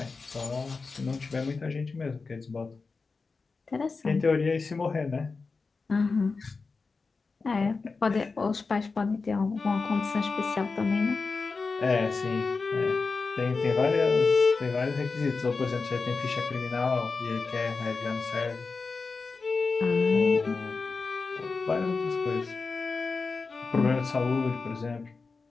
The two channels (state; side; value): quieter; right; 4.3 dB